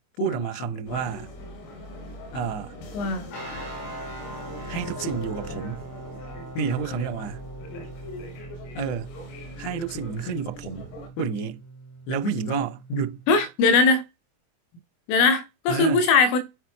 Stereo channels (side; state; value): right; late; 24 ms